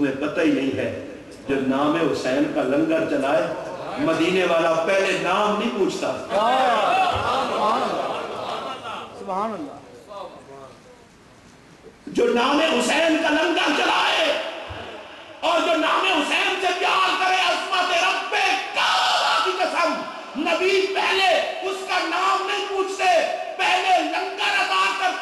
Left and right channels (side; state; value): both; identical; correlation 1.00